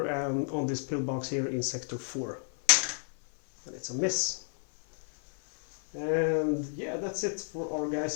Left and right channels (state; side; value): silent; right; 57 dB below the other